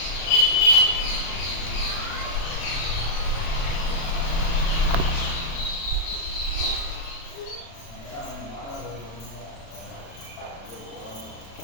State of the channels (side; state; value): right; late; 36 ms